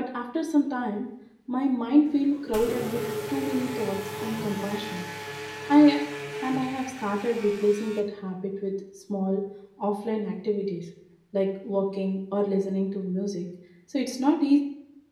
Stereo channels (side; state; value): both; identical; correlation 1.00